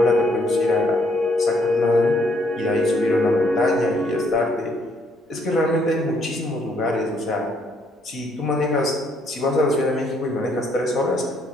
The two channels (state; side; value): normal; both; correlation 0.69